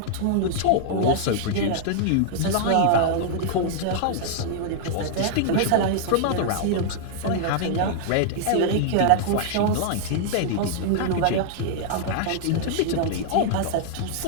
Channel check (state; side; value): different; both; correlation -0.01